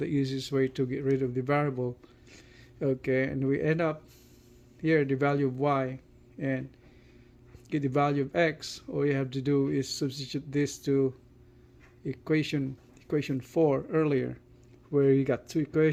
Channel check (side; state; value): both; identical; correlation 1.00